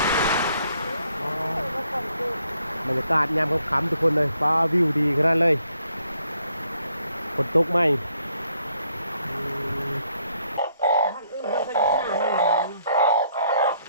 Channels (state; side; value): inverted; both; correlation -0.71